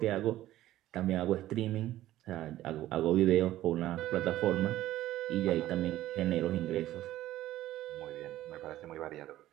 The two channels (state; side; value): quieter; left; 14.4 dB